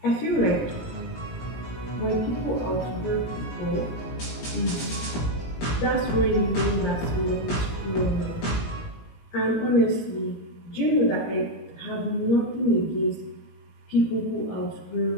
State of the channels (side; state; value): right; late; 17 ms